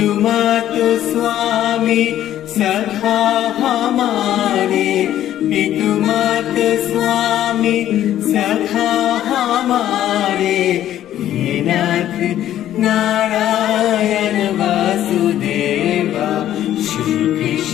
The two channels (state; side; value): quieter; right; 12.1 dB